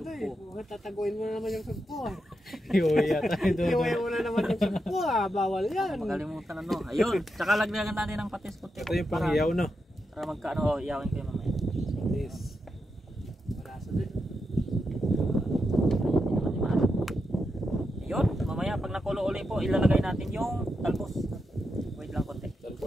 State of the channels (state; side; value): normal; both; correlation 0.86